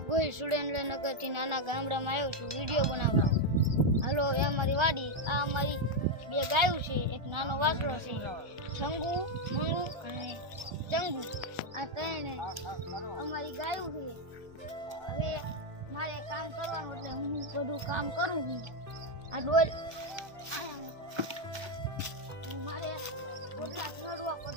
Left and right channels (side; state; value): left; late; 1.3 ms